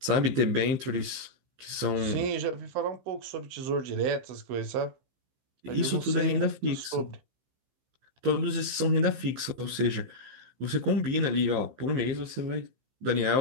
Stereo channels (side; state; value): left; late; 15 ms